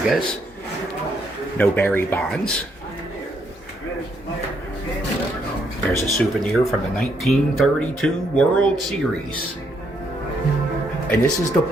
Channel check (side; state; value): both; normal; correlation 0.74